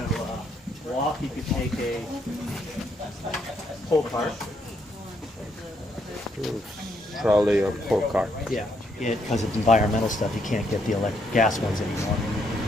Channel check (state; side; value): normal; both; correlation 0.74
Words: walk, you can take a pull cart. Trolley or pull cart. Yeah. Because of environmental stuff, you can't get the gas ones anymore.